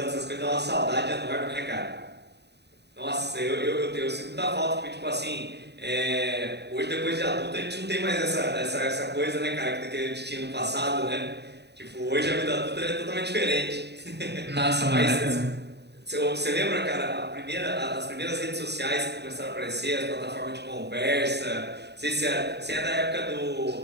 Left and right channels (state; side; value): late; left; 0.49 ms